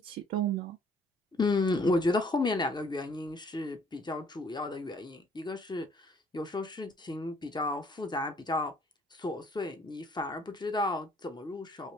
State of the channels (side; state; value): both; normal; correlation 0.61